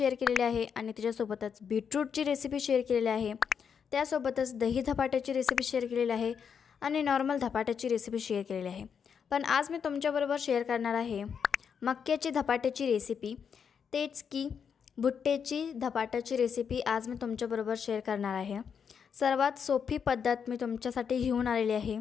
केलेली आहे आणि त्याच्यासोबतच बीटरूटची रेसिपी शेअर केलेली आहे। त्यासोबतच दही धपाट्याची रेसिपी शेअर केलेली आहे आणि नॉर्मल धपाट्याची रेसिपी शेअर केलेली आहे। पण आज मी तुमच्याबरोबर शेअर करणार आहे मक्याची धपाट्याची रेसिपी, तेच की भुट्ट्याची धपाट्याची रेसिपी आज मी तुमच्याबरोबर शेअर करणार आहे। सर्वात सोपी पद्धत मी तुमच्यासाठी घेऊन आलेली आहे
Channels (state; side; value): quieter; right; 7.0 dB